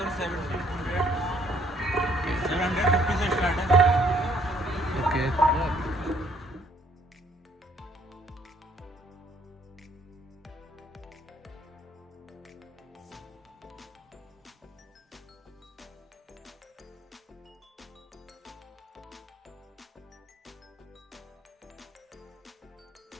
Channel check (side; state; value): both; normal; correlation 0.64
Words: 750 से स्टार्ट है। ओके,